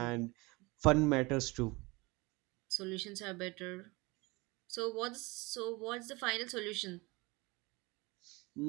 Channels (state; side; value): quieter; left; 24.7 dB